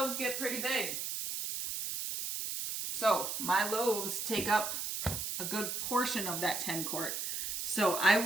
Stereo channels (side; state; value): right; noise; hiss, 3 dB below the sound